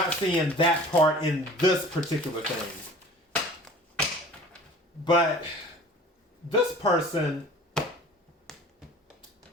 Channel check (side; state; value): both; normal; correlation 0.45